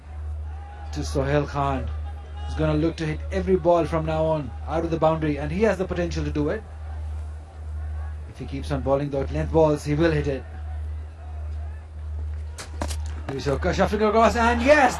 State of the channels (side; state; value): both; identical; correlation 1.00